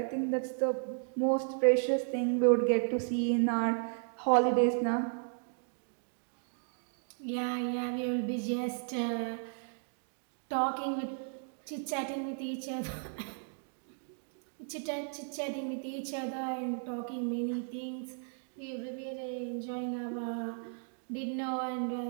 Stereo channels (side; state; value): left; silent; 55 dB below the other